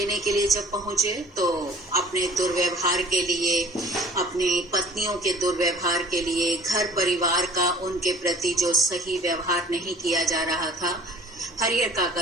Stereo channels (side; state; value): both; normal; correlation 0.49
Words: के लिए जब पहुंचे, तो अपने दुर्व्यवहार के लिए, अपनी पत्नियों के दुर्व्यवहार के लिए, घर परिवार का उनके प्रति जो सही व्यवहार नहीं किया जा रहा था, हरिहर